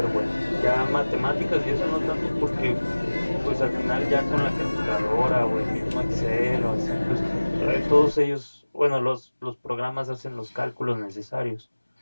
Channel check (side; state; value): both; inverted; correlation -1.00